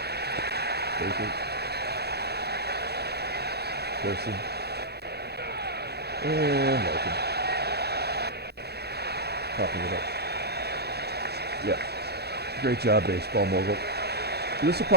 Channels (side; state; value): left; late; 0.47 ms